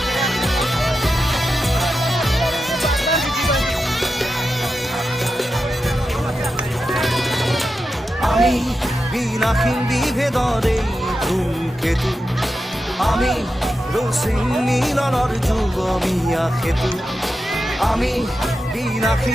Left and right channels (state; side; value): normal; both; correlation 0.90